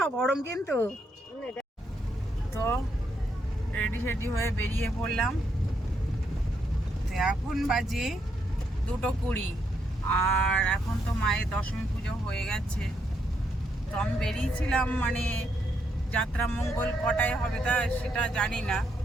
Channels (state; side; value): normal; both; correlation 0.77